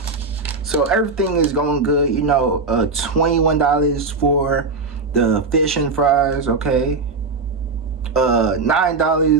So everything is going good, you know. $21 for the fish and fries, okay.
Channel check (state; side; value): quieter; left; 4.1 dB